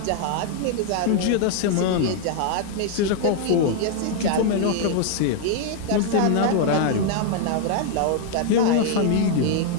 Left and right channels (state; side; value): different; both; correlation 0.00